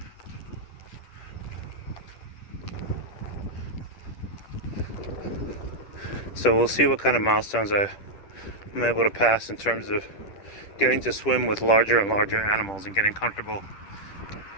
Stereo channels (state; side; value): late; right; 10 ms